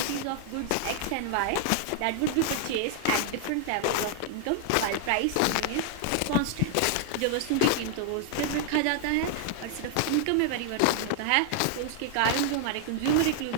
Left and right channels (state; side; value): different; both; correlation 0.00